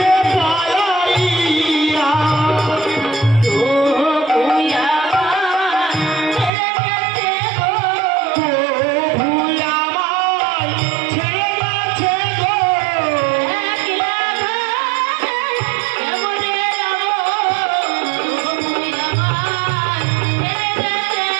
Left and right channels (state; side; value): drops out; left; at 6.5 s